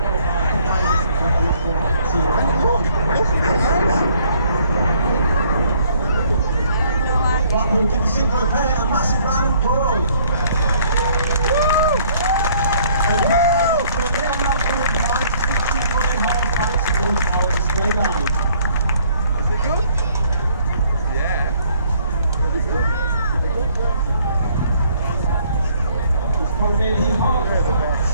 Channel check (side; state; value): both; inverted; correlation -0.62